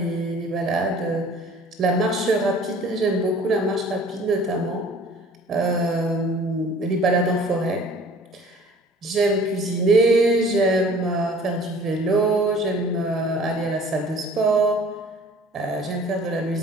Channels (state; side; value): normal; both; correlation 0.49